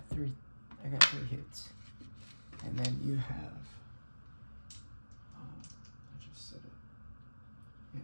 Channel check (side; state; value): both; inverted; correlation -1.00